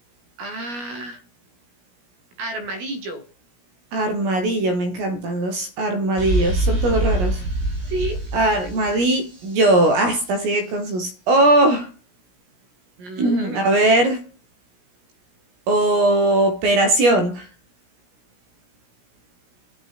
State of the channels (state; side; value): late; left; 17 ms